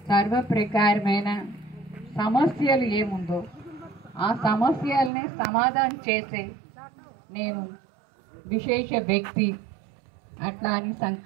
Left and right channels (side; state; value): left; drops out; at 5.1 s